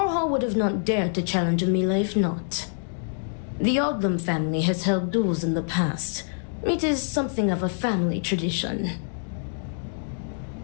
would have not dared to challenge Amila if not. The Odlum family has held duels in the past. It is something of a family tradition.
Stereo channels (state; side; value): silent; right; digital silence